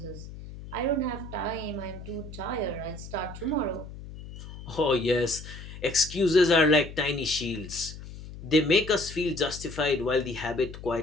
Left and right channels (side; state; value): left; noise; hum, 13 dB below the sound